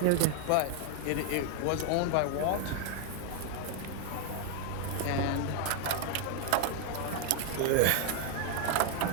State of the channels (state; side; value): different; both; correlation 0.01